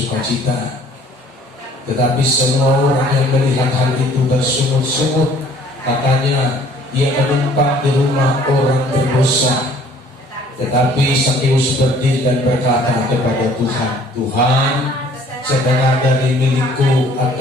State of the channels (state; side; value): normal; both; correlation 0.56